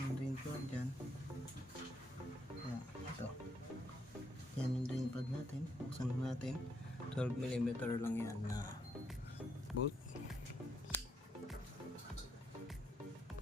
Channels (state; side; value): normal; both; correlation 0.76